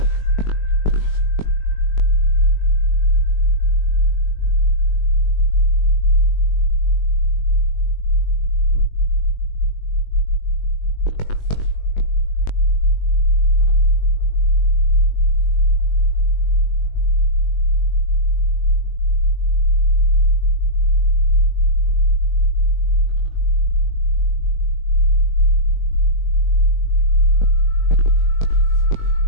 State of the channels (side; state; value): right; late; 20 ms